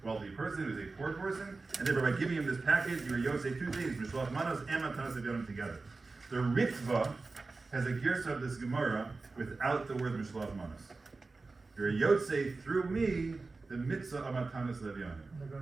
wealthy person; he was a poor person, and therefore by giving him this package, you were yosei two things: Mishloach Manos and matanos le'avyonim together. The Mitzvah has a girsa of this Gemara without the word Mishloach Manos. You're a yosei through me, the mitzvah of matanos le'avyonim.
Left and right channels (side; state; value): left; quieter; 3.7 dB